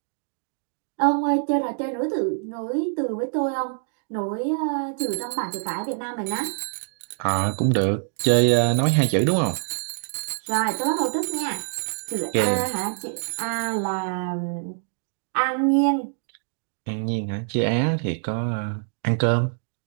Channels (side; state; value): left; silent; digital silence